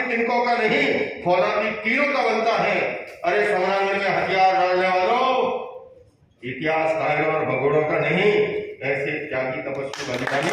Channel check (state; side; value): identical; both; correlation 1.00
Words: तिनकों का नहीं, फौलादी तीरों का बनता है। अरे समरांगन में हथियार डालने वालों, इतिहास कायरों और भगोड़ों का नहीं, ऐसे त्यागी तपस्वी बलिदानी